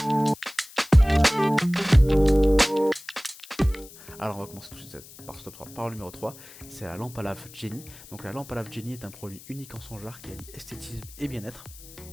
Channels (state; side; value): noise; left; hiss, 19 dB below the sound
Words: Alors on va commencer tout de suite par ce top 3, par le numéro 3, c'est la lampe à lave Jenny. Donc la lampe à lave Jenny est un produit unique en son genre qui allie esthétisme et bien-être.